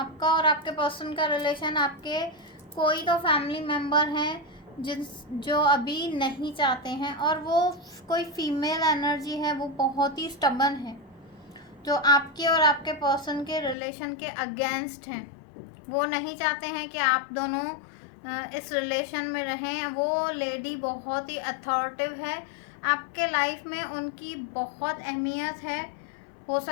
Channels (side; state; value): right; drops out; at 13.8 s